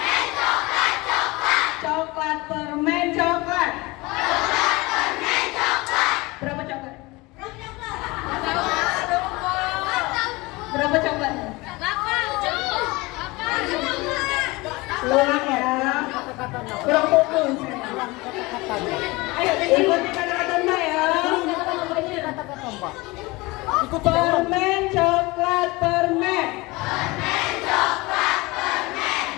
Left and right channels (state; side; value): quieter; right; 22.9 dB